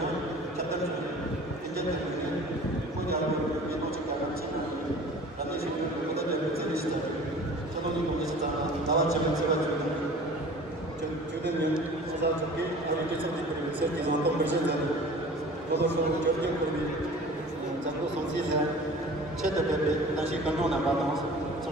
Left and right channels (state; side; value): normal; both; correlation 0.43